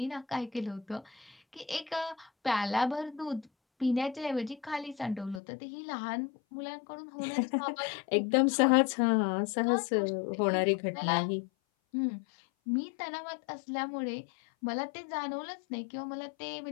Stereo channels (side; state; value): right; drops out; at 5.4 s